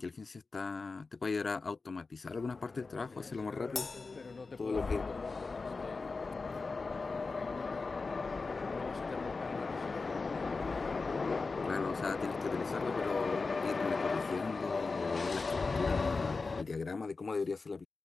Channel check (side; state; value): right; quieter; 4.1 dB